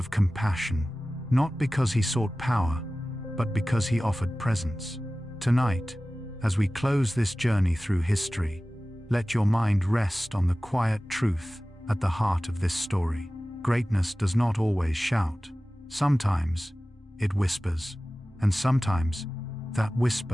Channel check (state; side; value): normal; both; correlation 0.97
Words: compassion. Not because he sought power, but because he offered presence. Tonight, as we close this journey through history, let your mind rest on the quiet truth at the heart of this story. Greatness does not always shout. Sometimes it whispers, and sometimes that